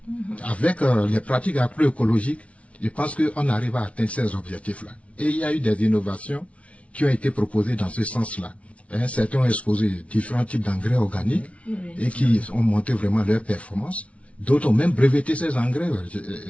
Avec les pratiques agroécologiques, je pense qu'on arrive à atteindre ces objectifs-là. Et il y a eu des innovations qui ont été proposées dans ce sens-là. Certains ont exposé différents types d'engrais organiques et qui ont monté vraiment leur performance. D'autres ont même breveté ces engrais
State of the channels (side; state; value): right; late; 0.063 ms